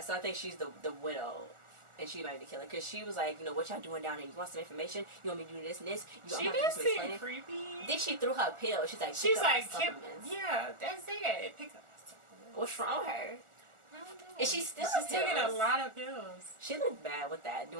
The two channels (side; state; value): left; late; 1.4 ms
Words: so I think she's the widow. And she might be killing because she was like, you know, what y'all doing down there? You want some information? You want me to do this and this? She did seem creepy. Then she threw her pill. She's like, yeah, that's it. Pick up supplements. What's wrong with her? I don't know. And she's taking a lot of pills. She looked bad with that,